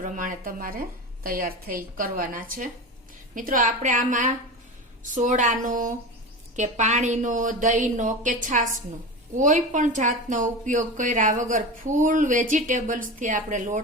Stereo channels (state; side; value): normal; both; correlation 0.27